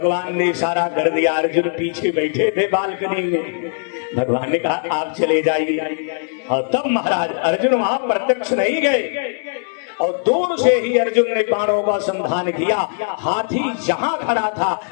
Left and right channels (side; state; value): right; silent; digital silence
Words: ने इशारा कर दिया। अर्जुन पीछे बैठे थे बालकनी में, भगवान ने कहा आप चले जाइए। और तब महाराज अर्जुन वहां प्रत्यक्ष नहीं गए और दूर से ही अर्जुन ने बाणों का संधान किया। हाथी जहां खड़ा था